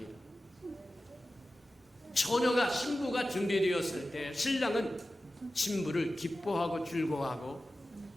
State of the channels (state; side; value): normal; both; correlation 0.94